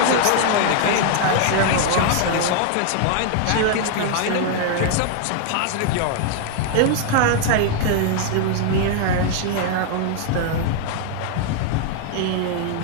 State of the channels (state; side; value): different; both; correlation 0.00